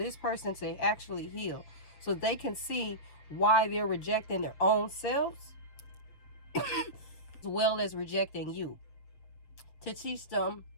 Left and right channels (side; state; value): right; late; 6.9 ms